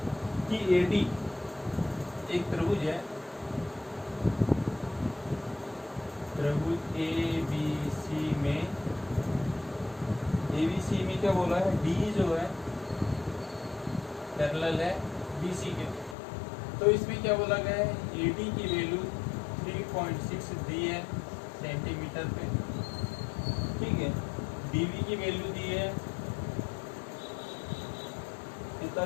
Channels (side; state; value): right; drops out; at 16.2 s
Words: कि AD एक त्रिभुज है, त्रिभुज ABC में क्या बोला है, D जो है पैरेलल है BC के। तो इसमें क्या बोला गया है, AD की वैल्यू 3.6 दी है सेंटीमीटर पे। ठीक है, DB की वैल्यू दी है कितना